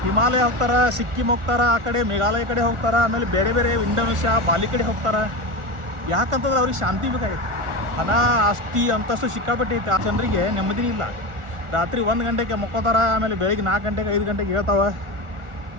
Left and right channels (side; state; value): left; late; 1.4 ms